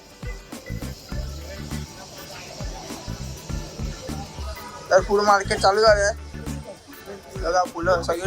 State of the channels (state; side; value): identical; both; correlation 1.00